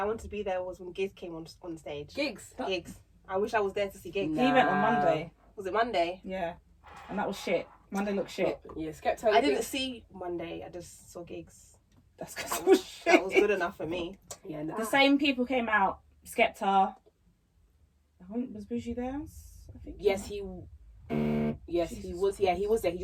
wanted to be there, was when Gigs came on stage. gigs. Gigs. I wish I was there to see Gigs. Nah. He went on Monday. Was it Monday? Yeah, and that was shit. Monday looked shit. Yeah, Skepta. I didn't see Monday. I just saw Gigs. That's because That it was was, shit. that was good enough for me. Yeah, nah. The same people came out. Skepta. Was Bougie there? I think. Yes, he was. Yeah, he was there. He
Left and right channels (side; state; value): both; identical; correlation 1.00